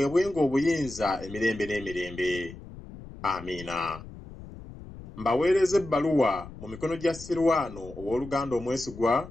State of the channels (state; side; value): noise; left; rumble, 15 dB below the sound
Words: obuyinza emirembe n'emirembe. Amiina. Mbaweereza ebbaluwa mu mikono gya Sirwano ow'oluganda omwesigwa,